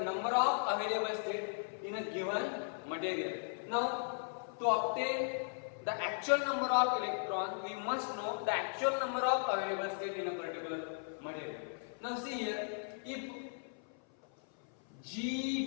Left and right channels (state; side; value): silent; right; 53 dB below the other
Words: number of available state in a given material. Now, to obtain the actual number of electrons, we must know the actual number of available state in a particular material. Now see here, if